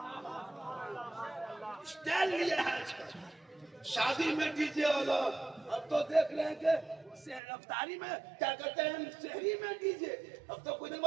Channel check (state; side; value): drops out; left; at 7.4 s